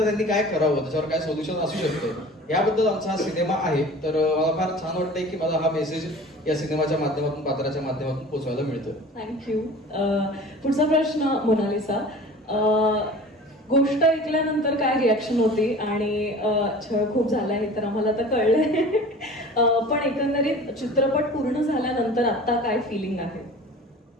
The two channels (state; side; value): normal; both; correlation 0.42